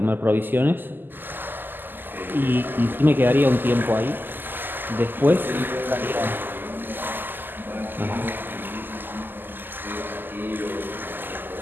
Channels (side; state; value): left; late; 0.092 ms